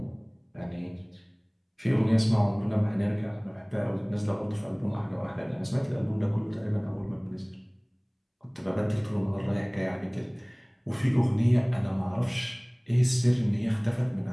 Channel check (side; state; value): both; identical; correlation 1.00